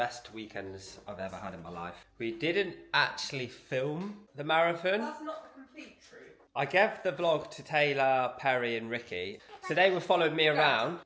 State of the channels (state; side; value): identical; both; correlation 1.00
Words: weekends I've ever had in my life. We didn't actually film the marathon. That's not the complete truth. I gave the vlog to Taylor, Perry and Ricky. So they were following me around,